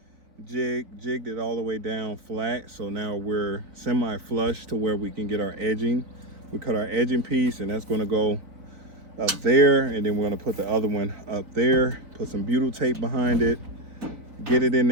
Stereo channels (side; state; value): left; late; 4.1 ms